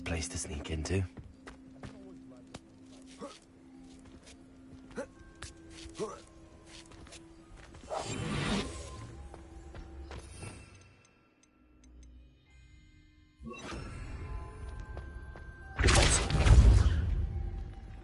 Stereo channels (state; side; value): identical; both; correlation 1.00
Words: place to sneak into.